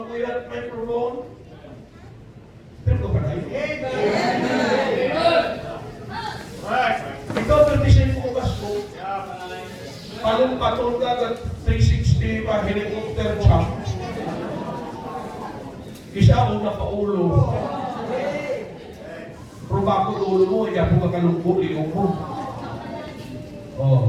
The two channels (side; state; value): both; identical; correlation 1.00